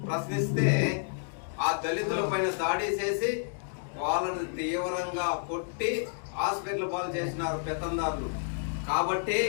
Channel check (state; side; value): silent; right; digital silence